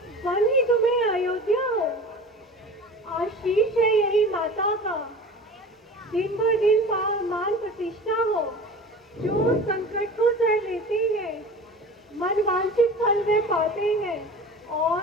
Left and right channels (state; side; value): normal; both; correlation 0.37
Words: वन ही तुम्हें अयोध्या हो। आशीष है यही माता का, दिन भर दिन मान प्रतिष्ठा हो। जो संकट को सह लेते हैं, मन वांछित फल वे पाते हैं और